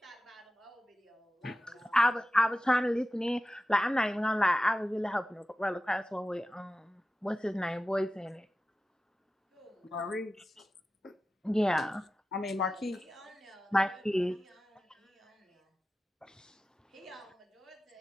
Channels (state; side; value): normal; both; correlation 0.94